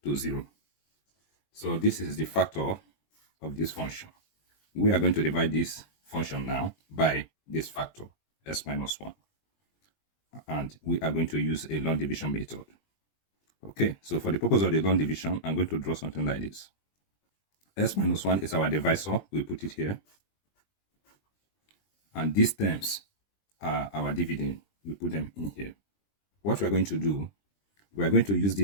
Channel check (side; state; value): right; late; 20 ms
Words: to 0. So this is the factor of this function. We are going to divide this function now by this factor, s minus 1. And we are going to use a long division method. Okay, so for the purpose of the long division, I'm going to draw something like this. S minus 1 is our divisor. We put it here. And these terms are our dividend. We put them in here. What we are going to do, we are going to use